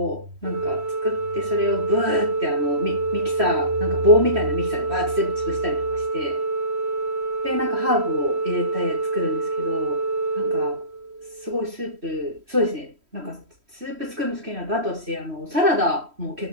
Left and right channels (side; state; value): left; late; 3.1 ms